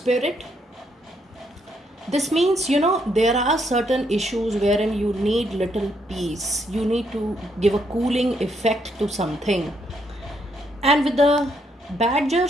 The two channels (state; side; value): normal; both; correlation 0.74